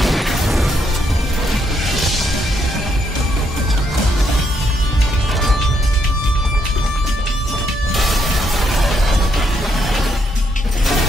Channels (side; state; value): both; normal; correlation 0.75